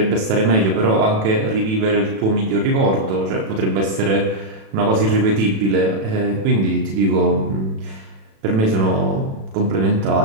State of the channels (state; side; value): late; left; 36 ms